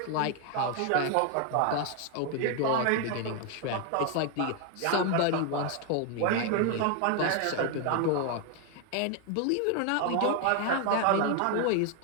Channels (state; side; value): different; both; correlation 0.01